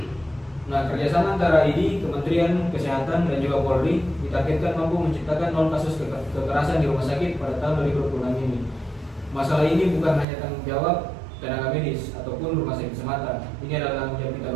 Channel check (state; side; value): drops out; left; at 10.2 s